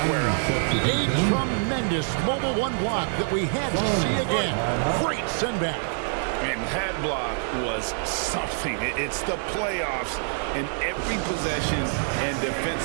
up. A tremendous mobile 1 block that we had to see again. Great send back. And that block was something. It's the playoffs, and every possession and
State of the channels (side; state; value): left; silent; 58 dB below the other